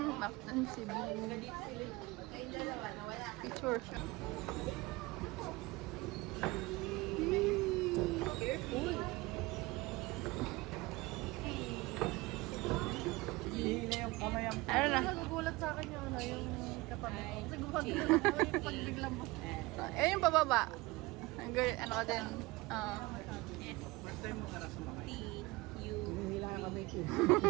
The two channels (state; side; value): quieter; left; 21.8 dB